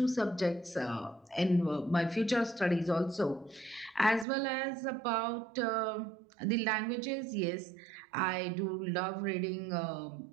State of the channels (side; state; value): left; drops out; at 4.2 s